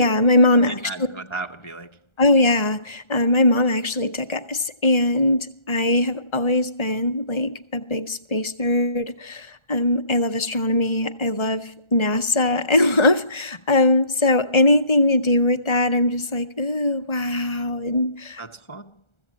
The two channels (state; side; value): late; right; 1.3 ms